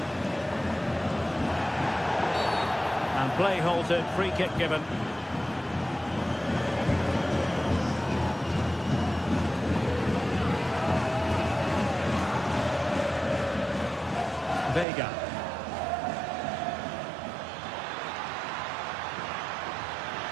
And play halted, free kick given. Vega.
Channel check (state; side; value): drops out; left; at 14.9 s